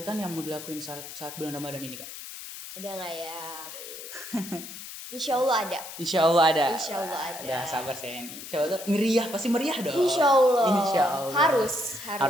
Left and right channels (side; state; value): left; noise; hiss, 11 dB below the sound